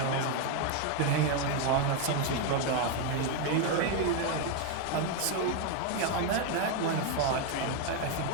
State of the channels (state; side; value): different; both; correlation 0.01